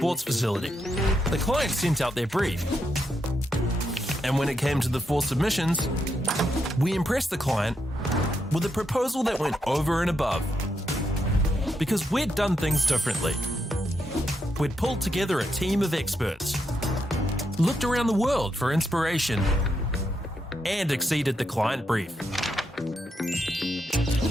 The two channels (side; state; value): both; normal; correlation 0.81